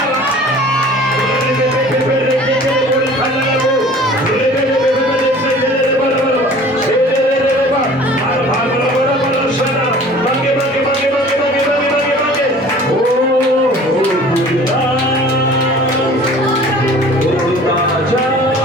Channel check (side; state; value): both; normal; correlation 0.46